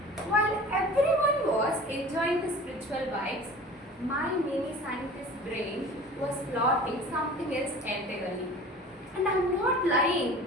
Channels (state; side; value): normal; both; correlation 0.41